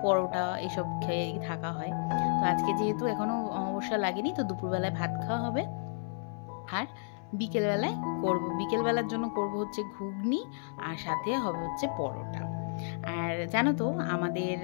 পরোটা এসব খেয়ে থাকা হয়। তো আজকে যেহেতু এখনও অমাবস্যা লাগেনি, তো দুপুরবেলায় ভাত খাওয়া হবে। আর বিকেলবেলার জন্য করব হচ্ছে ঘুগনি, আর সাথে হবে হচ্ছে পরোটা। আর জানো তো, আমাদের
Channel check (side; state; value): right; silent; 56 dB below the other